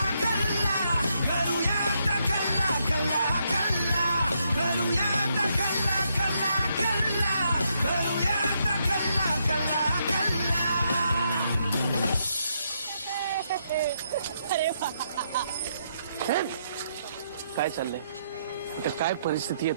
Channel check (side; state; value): both; inverted; correlation -0.77